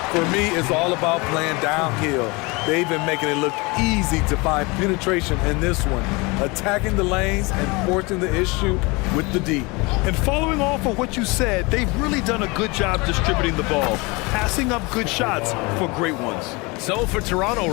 For me, it's all about playing downhill. They've been making it look easy to find penetration in this one, attacking the lanes and forcing the issue with the D. And following off of what you said, they've really done a good job distributing the ball, passing up good shots for great ones. So for Toronto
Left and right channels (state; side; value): quieter; right; 26.3 dB